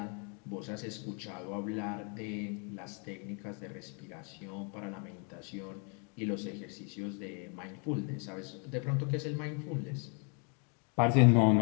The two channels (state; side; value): quieter; right; 37.6 dB